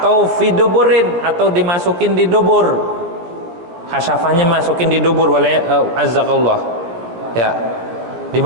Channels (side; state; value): left; late; 17 ms